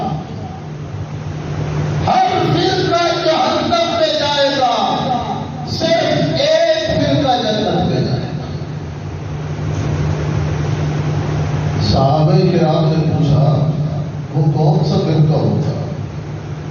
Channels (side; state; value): both; identical; correlation 1.00